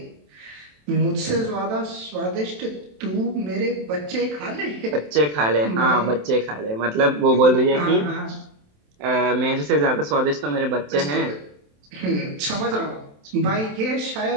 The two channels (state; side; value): late; left; 27 ms